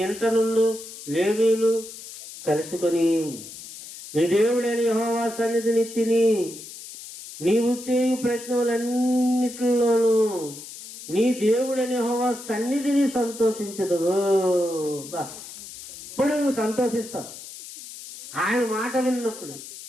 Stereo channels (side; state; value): left; noise; hiss, 14 dB below the sound